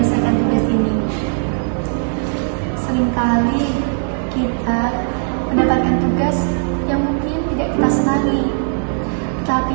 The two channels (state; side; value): silent; left; 61 dB below the other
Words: tugas ini. Seringkali kita mendapatkan tugas yang mungkin tidak kita senangi,